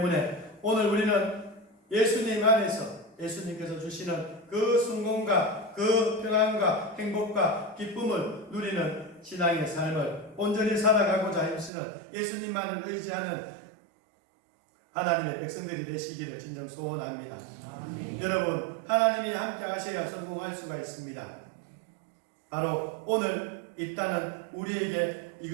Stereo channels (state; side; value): drops out; left; at 11.7 s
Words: 오늘 우리는 예수님 안에서 예수님께서 주시는 그 성공과 그 평안과 행복과 기쁨을 누리는 신앙의 삶을 온전히 살아가고자 힘쓰는 예수님만을 의지하는 하나님의 백성들이 되시기를 진정 소원합니다. 여러분 하나님이 함께 하셔야 성공할 수가 있습니다. 바로 오늘 입다는 우리에게